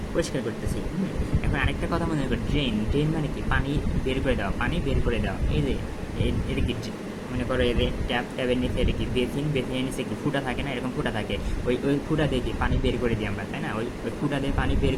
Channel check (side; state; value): both; identical; correlation 1.00